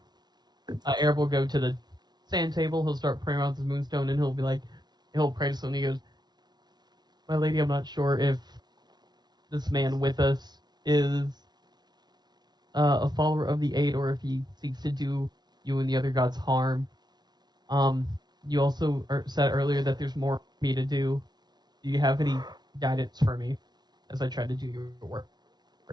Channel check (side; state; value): left; late; 0.20 ms